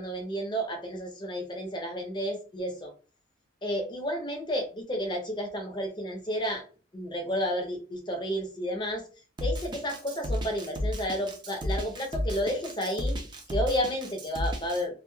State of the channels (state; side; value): normal; both; correlation 0.47